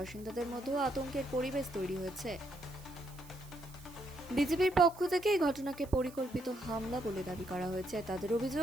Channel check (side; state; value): right; noise; hiss, 21 dB below the sound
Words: মধ্যেও আতঙ্কের পরিবেশ তৈরি হয়েছে। বিজেপির পক্ষ থেকে এই ঘটনাকে পরিকল্পিত হামলা বলে দাবি করা হয়েছে। তাদের